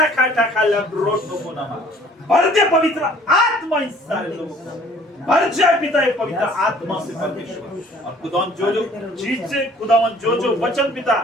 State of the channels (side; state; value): both; normal; correlation 0.54